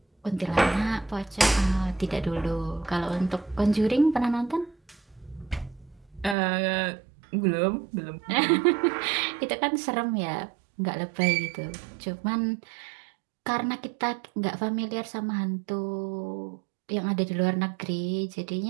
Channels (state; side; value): drops out; left; at 6.4 s